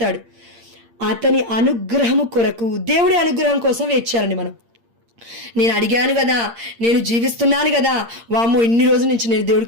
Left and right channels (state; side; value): late; left; 8.7 ms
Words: అతని అనుగ్రహము కొరకు, దేవుడి అనుగ్రహం కోసం వేచారండి మనం. నేను అడిగాను కదా, నేను జీవిస్తున్నాను కదా, వామ్మో ఇన్ని రోజుల నుంచి నేను